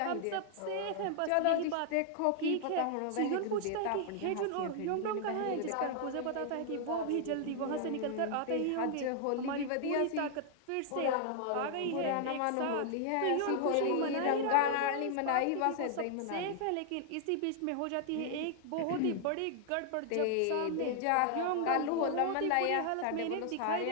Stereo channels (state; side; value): different; both; correlation -0.01